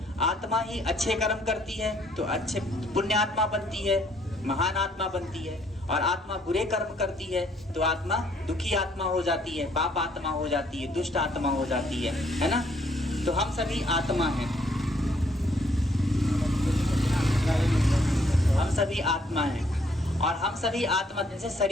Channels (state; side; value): normal; both; correlation 0.66